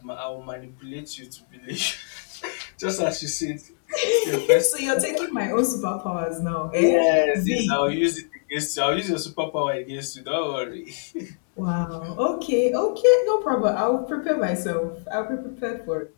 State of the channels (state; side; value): silent; right; digital silence